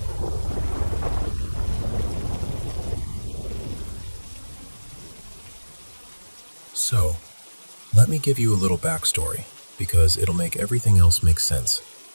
So, let me give you a little backstory, because it'll make everything else make sense.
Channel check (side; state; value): both; inverted; correlation -1.00